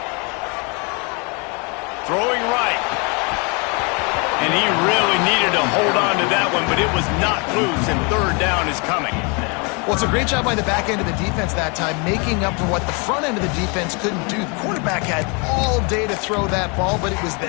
Throwing right. And he really needed to hold on to that one, but it was not loose, and third down is coming. Well, it's a great job by the back end of the defense that time, making up for what the front end of the defense couldn't do. The quarterback had all day to throw that ball, but it was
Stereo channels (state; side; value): quieter; right; 32.5 dB